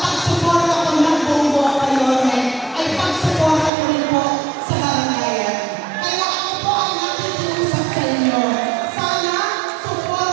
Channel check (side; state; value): left; drops out; at 3.7 s